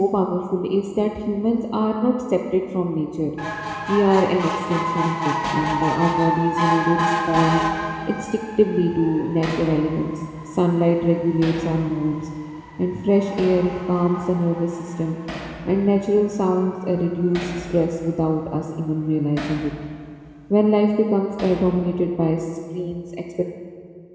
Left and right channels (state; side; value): identical; both; correlation 1.00